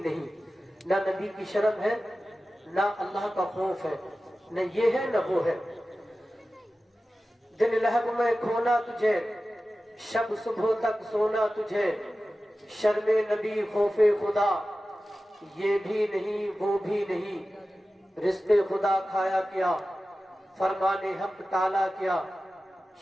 نہیں۔ نہ نبی کی شرم ہے نہ اللہ کا خوف ہے، نہ یہ ہے نہ وہ ہے۔ دن لہب میں کھونا تجھے شب صبح تک سونا تجھے، شرم نبی خوف خدا یہ بھی نہیں وہ بھی نہیں، رزق خدا کھایا کیا فرمان حق ٹالا کیا،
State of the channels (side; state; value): both; normal; correlation 0.95